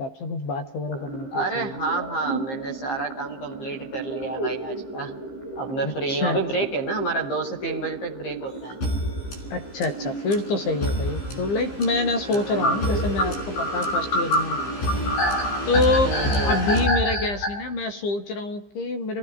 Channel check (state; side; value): late; right; 15 ms